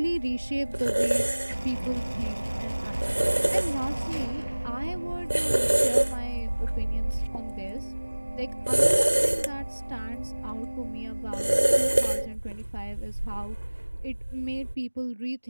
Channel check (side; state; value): both; inverted; correlation -1.00